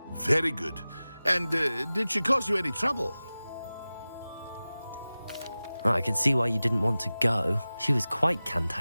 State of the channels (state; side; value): inverted; both; correlation -0.97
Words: Very good. And did she cause you any trouble? I can see why you didn't want to go. She was quite